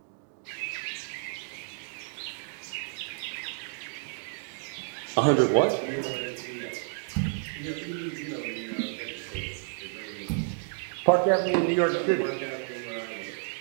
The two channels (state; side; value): silent; left; 58 dB below the other